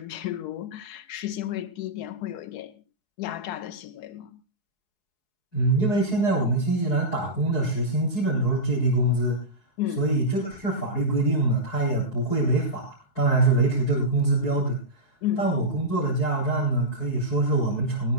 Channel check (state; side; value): late; right; 4.7 ms